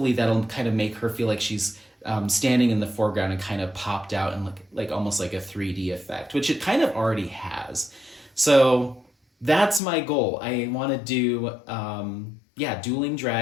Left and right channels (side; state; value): right; drops out; at 9.8 s